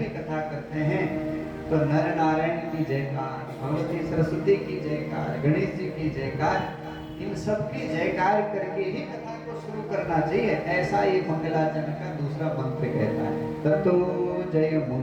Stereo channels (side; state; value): both; identical; correlation 1.00